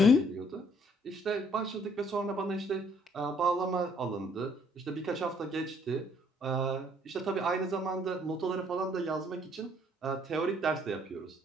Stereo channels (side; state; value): both; normal; correlation 0.64